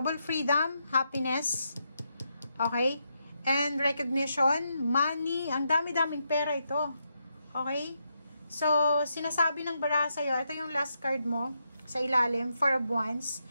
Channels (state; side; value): inverted; both; correlation -0.82